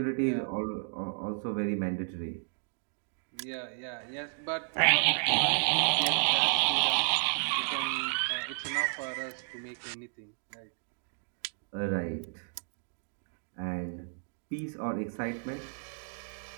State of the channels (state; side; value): silent; left; 56 dB below the other